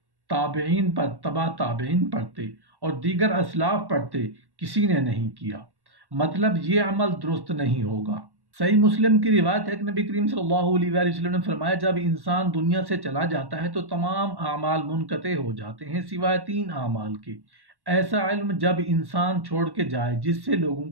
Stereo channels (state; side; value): late; left; 1.1 ms